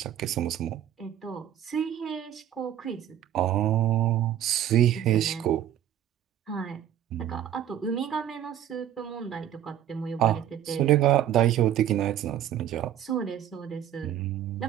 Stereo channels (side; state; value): left; quieter; 10.9 dB